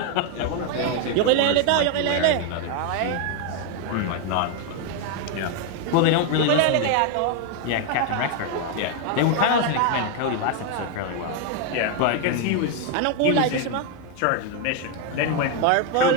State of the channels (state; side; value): different; both; correlation 0.01